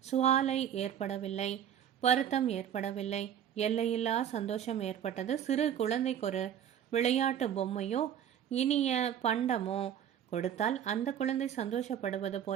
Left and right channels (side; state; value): left; quieter; 9.5 dB